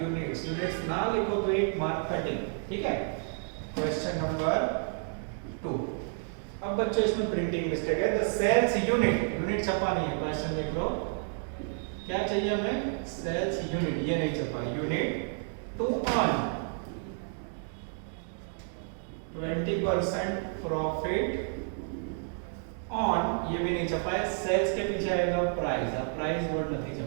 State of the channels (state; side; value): silent; left; 57 dB below the other